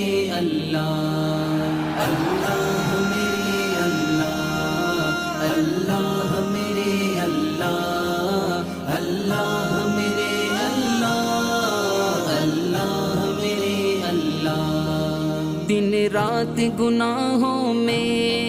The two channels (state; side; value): identical; both; correlation 1.00